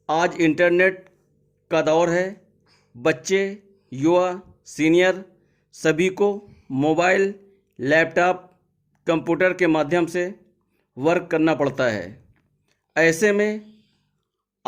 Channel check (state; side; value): identical; both; correlation 1.00